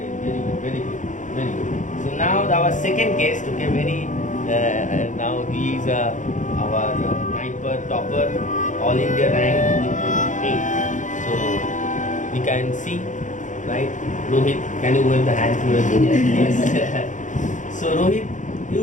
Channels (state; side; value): late; right; 0.36 ms